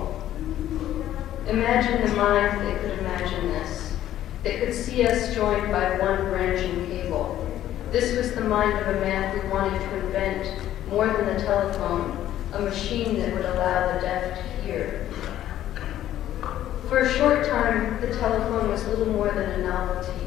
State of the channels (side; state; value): right; quieter; 12.4 dB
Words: Imagine the mind that could imagine this, that could see us joined by one branching cable. This was the mind of a man who wanted to invent, more than the telephone, a machine that would allow the deaf to hear. For a short time, the telephone was little more than a novelty.